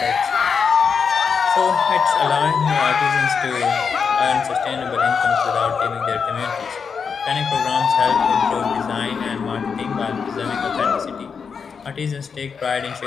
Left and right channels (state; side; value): quieter; right; 6.0 dB